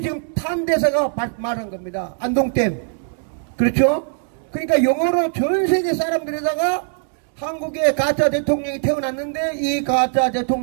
지금 탄 대사가 말한 겁니다. 안동댐. 그렇죠? 그러니까 영어로 전 세계 사람들에다가 한국의 가짜 대통령이 태어났는데 이 가짜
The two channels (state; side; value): silent; left; 65 dB below the other